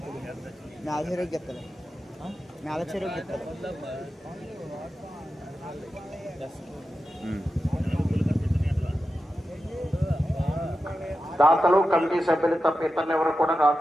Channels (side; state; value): both; normal; correlation 0.91